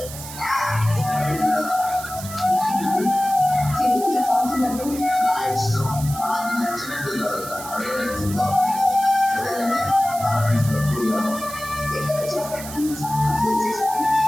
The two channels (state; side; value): noise; right; hiss, 12 dB below the sound